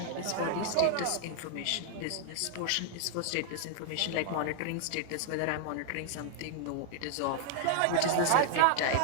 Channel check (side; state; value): both; different; correlation 0.00